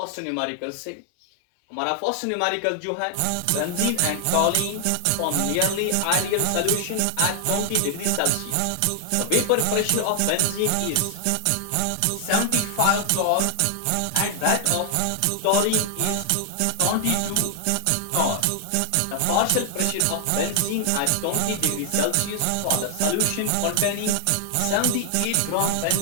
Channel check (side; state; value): both; different; correlation 0.00